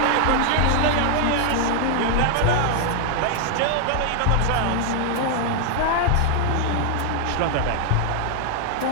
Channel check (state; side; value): different; both; correlation 0.00